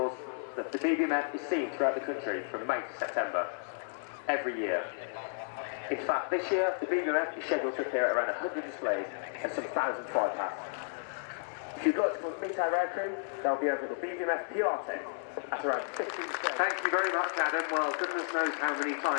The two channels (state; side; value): silent; right; digital silence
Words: that the BBMF is seen throughout the country from May to September, every year. In fact, this year, the BBMF is scheduled to appear at around 100 displays and some 1,000 flypasts. If you'd like to come meet our aircrew, they'll be over at the BBMF PR tent at around 15 days. Thank you very much, Adam. Well, goodness knows how many